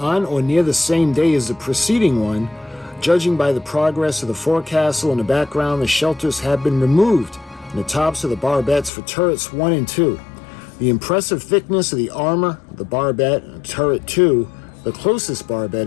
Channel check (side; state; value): right; drops out; at 8.9 s